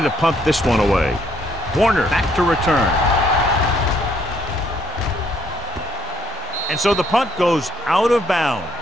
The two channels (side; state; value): both; normal; correlation 0.68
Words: to punt this one away. Warner back to return. And so the punt goes out of bounds.